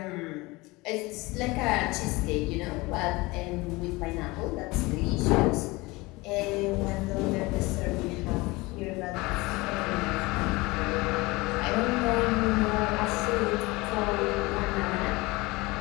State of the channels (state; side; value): quieter; right; 22.8 dB